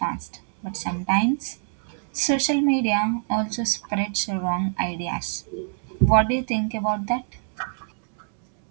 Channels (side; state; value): left; silent; digital silence